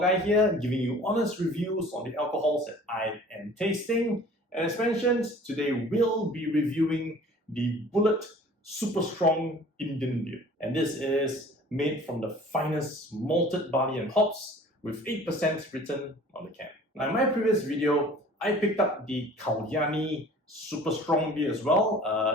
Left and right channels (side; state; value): both; normal; correlation 0.48